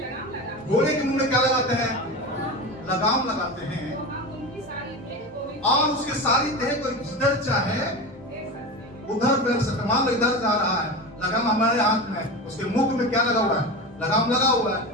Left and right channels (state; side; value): normal; both; correlation 0.25